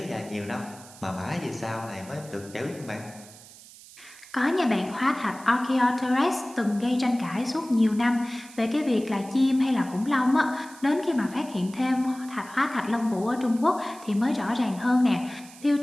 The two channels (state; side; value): noise; right; hiss, 20 dB below the sound